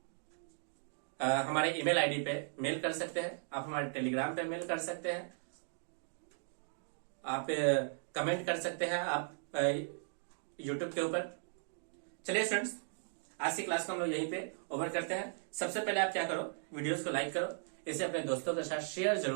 हमारे ईमेल आईडी पे मेल कर सकते हैं, आप हमारे टेलीग्राम पे मेल कर सकते हैं, आप कमेंट कर सकते हैं, आप यूट्यूब के ऊपर। चलिए स्टूडेंट्स, आज की क्लास को हम लोग यहीं पे ओवर करते हैं। सबसे पहले आप क्या करो, वीडियोस को लाइक करो, इसे अपने दोस्तों के साथ शेयर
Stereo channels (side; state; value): left; silent; digital silence